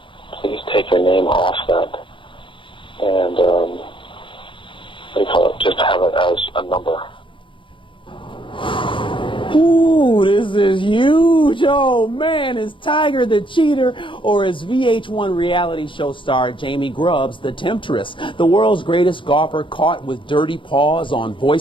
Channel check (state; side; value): late; right; 0.24 ms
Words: please take your name off that and what do you call it? Just have it as a number. Ooh, this is huge. Oh, man, is Tiger the cheater or is VH1 reality show star Jamie Grubbs the temptress? The world's greatest golfer caught with dirty paws on